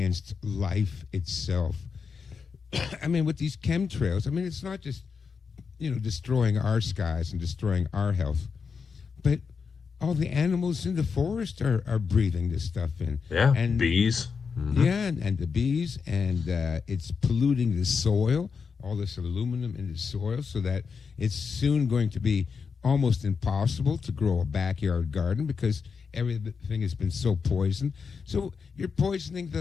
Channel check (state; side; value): quieter; right; 5.6 dB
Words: life itself. I mean, with these chemtrails, I mean, it's not just, destroying our skies and destroying our health, but all the animals in the forest are breathing this stuff in. yeah, And bees. yeah, and the bees, and it's polluting the soil, all this aluminum in the soil, so that it's soon going to be almost impossible to grow a backyard garden because everything has been so poisoned. So you're poisoning the